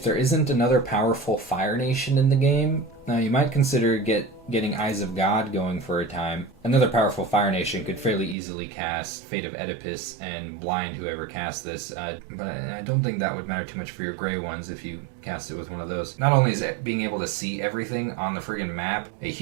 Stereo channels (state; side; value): drops out; left; at 8.3 s